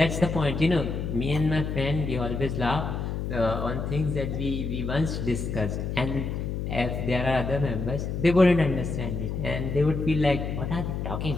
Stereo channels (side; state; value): left; noise; hum, 3 dB below the sound